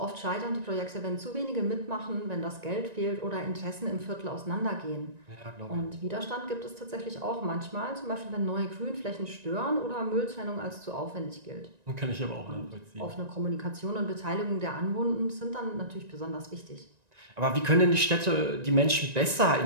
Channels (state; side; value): late; left; 1.9 ms